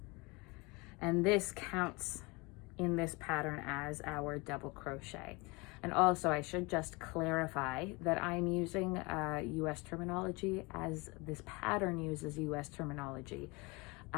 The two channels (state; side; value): quieter; right; 26.3 dB